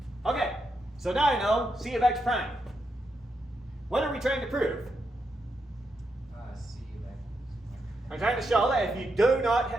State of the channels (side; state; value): both; normal; correlation 0.83